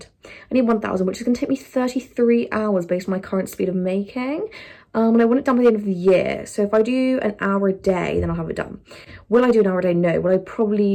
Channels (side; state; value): both; identical; correlation 1.00